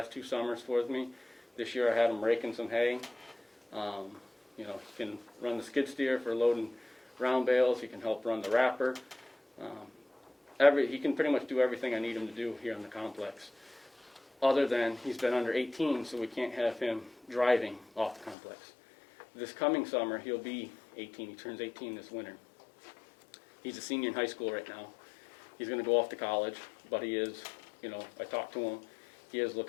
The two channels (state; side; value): drops out; right; at 18.4 s